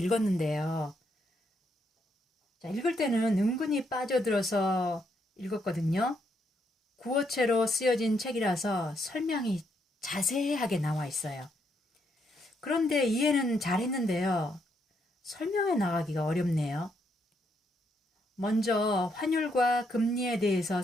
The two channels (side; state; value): both; normal; correlation 0.76